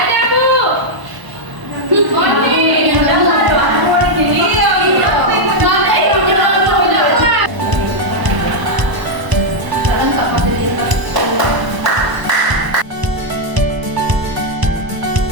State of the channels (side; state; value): left; late; 1.0 ms